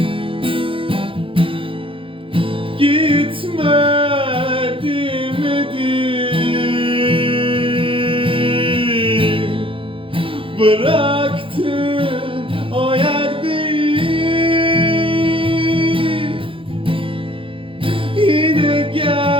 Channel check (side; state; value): left; late; 0.25 ms